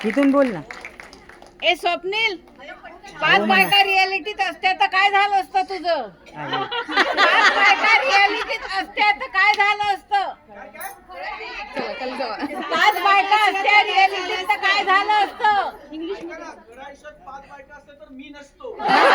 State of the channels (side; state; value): both; identical; correlation 1.00